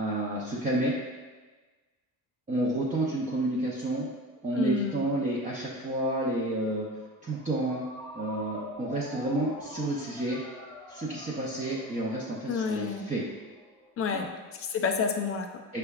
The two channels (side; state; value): both; normal; correlation 0.31